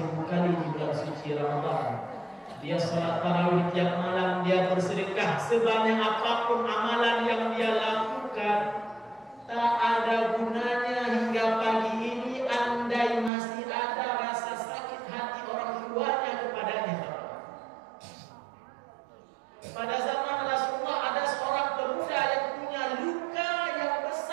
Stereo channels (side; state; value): left; drops out; at 13.3 s